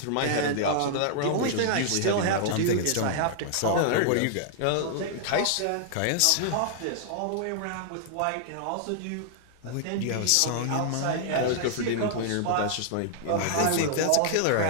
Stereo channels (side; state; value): both; different; correlation -0.01